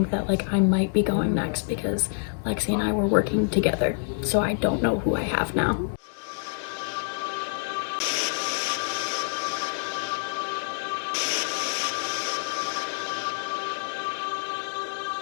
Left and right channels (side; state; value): right; silent; 60 dB below the other